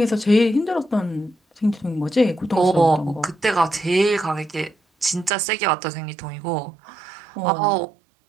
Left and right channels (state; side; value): drops out; left; at 5.3 s